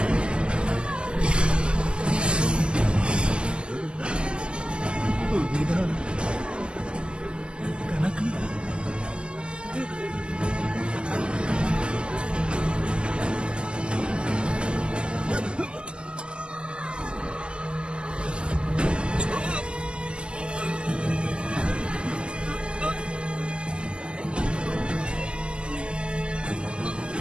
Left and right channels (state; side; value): late; left; 0.049 ms